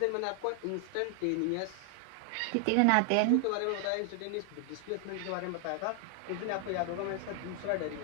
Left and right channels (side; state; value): both; different; correlation 0.00